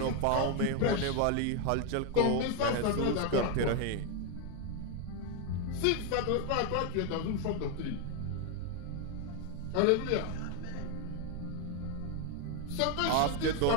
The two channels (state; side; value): different; both; correlation 0.01